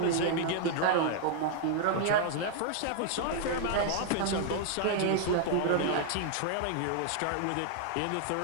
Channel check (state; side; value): different; both; correlation 0.00